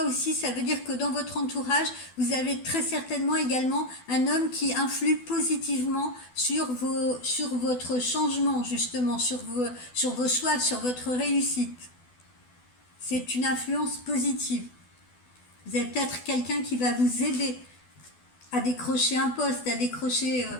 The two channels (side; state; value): right; late; 12 ms